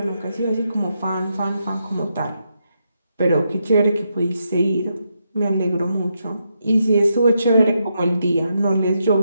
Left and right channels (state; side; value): inverted; both; correlation -0.82